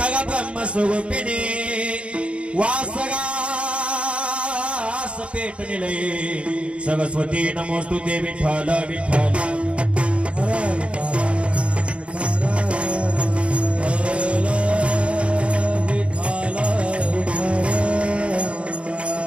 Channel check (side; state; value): left; late; 0.060 ms